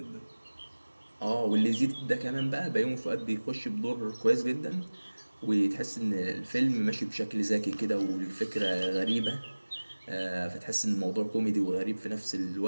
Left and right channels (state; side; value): inverted; both; correlation -1.00